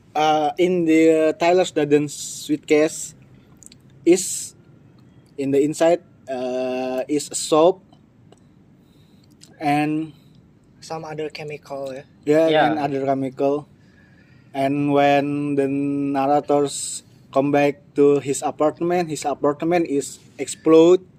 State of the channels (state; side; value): identical; both; correlation 1.00